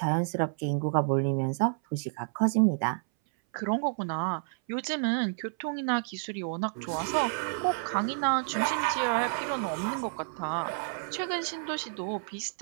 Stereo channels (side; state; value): left; silent; 58 dB below the other